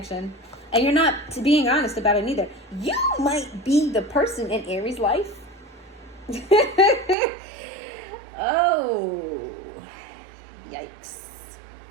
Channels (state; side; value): drops out; left; at 7.2 s